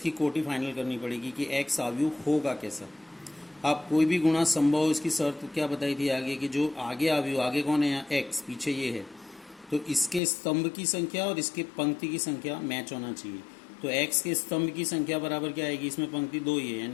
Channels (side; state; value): right; drops out; at 10.2 s